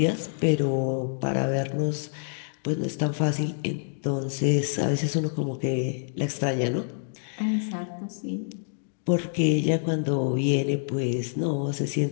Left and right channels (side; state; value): right; silent; digital silence